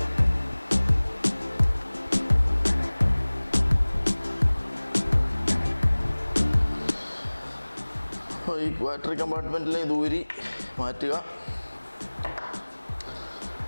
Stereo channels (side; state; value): both; inverted; correlation -1.00